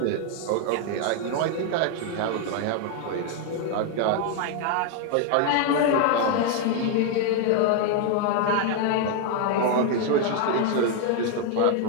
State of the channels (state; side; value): different; both; correlation 0.00